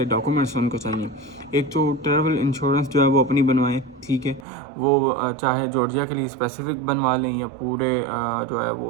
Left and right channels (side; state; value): left; drops out; at 4.5 s